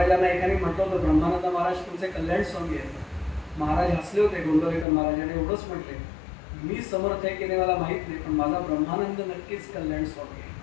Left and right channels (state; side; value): drops out; right; at 4.9 s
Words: एकाने म्हटलं होतं, ब्रह्मानंद महाराज तुमचे कल्याण स्वामी आहेत. महाराज हसले होते, गोंदवलेकर महाराजांनी एवढंच म्हटले, मी समर्थ आहे की नाही मला माहित नाही, पण माझा ब्रह्मानंद नक्कीच कल्याण स्वामी आहे.